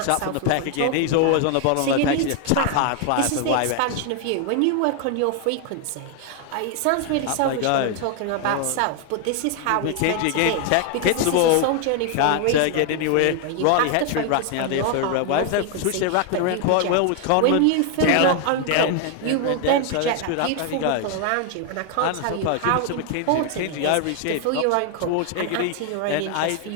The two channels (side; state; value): both; different; correlation 0.00